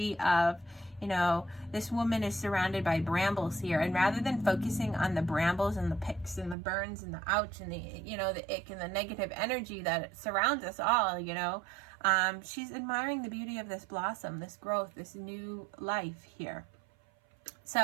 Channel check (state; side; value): drops out; left; at 6.6 s